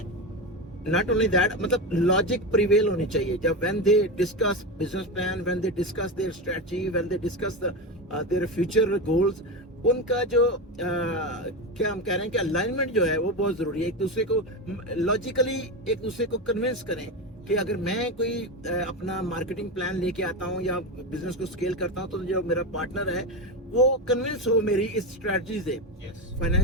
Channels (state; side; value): normal; both; correlation 0.18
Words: Not only that, मतलब लॉजिक प्रिवेल होनी चाहिए जब when they discuss business plan, when they discuss their strategy, when they discuss their future goals, उनका जो क्या हम कह रहे हैं कि अलाइनमेंट जो है वो बहुत जरूरी है। एक दूसरे को लॉजिकली एक दूसरे को कन्विंस करें कि अगर मैं कोई अपना मार्केटिंग प्लान लेके आता हूँ या बिजनेस को स्केल करता हूँ, तो जो मेरा पार्टनर है वो कन्विंस हो मेरी इस स्ट्रेटजी से।